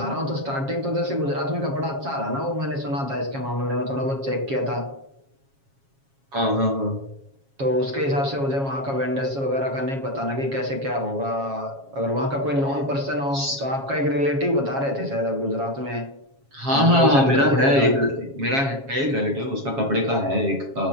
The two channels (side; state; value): left; late; 7.3 ms